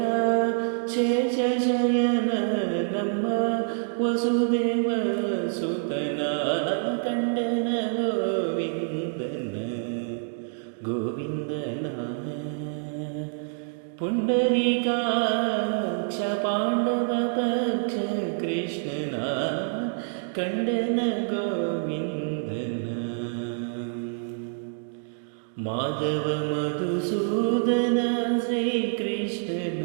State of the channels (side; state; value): left; silent; digital silence